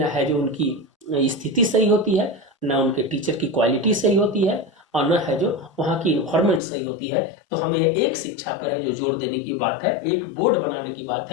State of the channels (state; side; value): drops out; right; at 6.6 s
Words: है जो उनकी स्थिति सही होती है, ना उनके टीचर की क्वालिटी सही होती है, और न है जो वहाँ की इन्वायरमेंट सही होती है। तो हमें एक शिक्षा पर है जो जोर देने की बात है, एक बोर्ड बनाने की बात